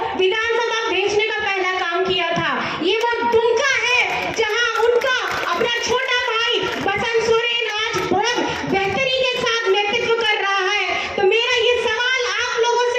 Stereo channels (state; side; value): identical; both; correlation 1.00